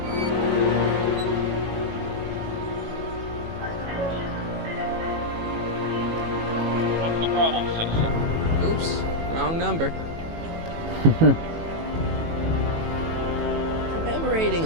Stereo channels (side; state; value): left; late; 18 ms